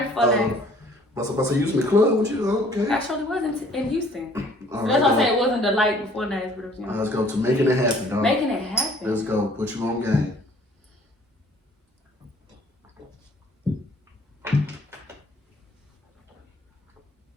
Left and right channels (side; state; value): both; normal; correlation 0.56